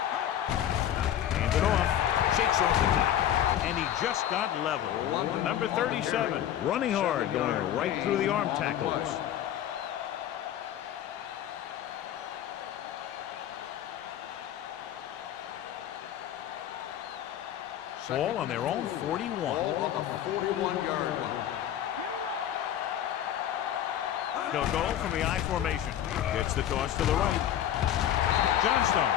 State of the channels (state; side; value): quieter; right; 11.0 dB